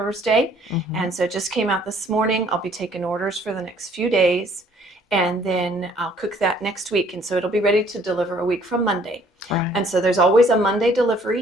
and so it just came out this morning. I'll be taking orders for the next few days, and then I'll cook that next week. And so it'll be ready to deliver a week from Monday. And so there's always a Monday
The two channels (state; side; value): normal; both; correlation 0.60